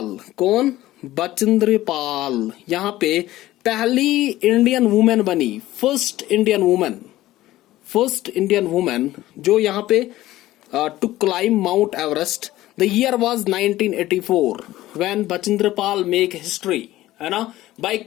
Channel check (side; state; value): right; quieter; 15.7 dB